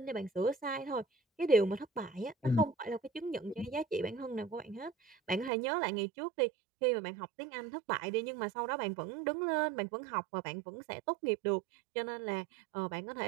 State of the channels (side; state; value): left; drops out; at 5.5 s